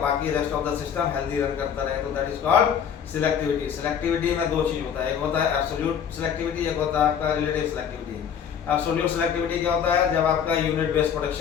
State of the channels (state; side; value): quieter; right; 8.1 dB